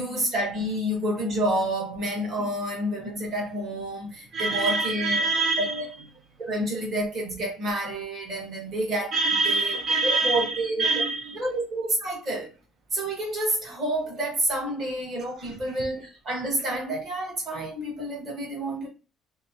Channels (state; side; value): normal; both; correlation 0.49